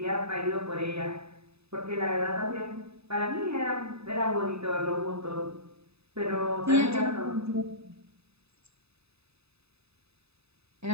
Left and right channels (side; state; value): left; late; 0.79 ms